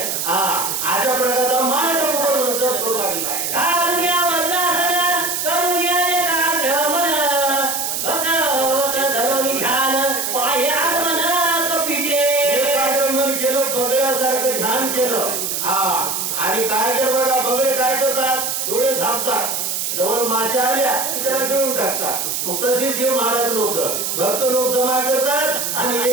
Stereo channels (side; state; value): right; noise; hiss, 1 dB below the sound